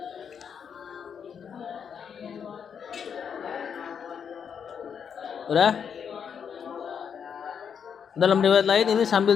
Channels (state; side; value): quieter; right; 7.3 dB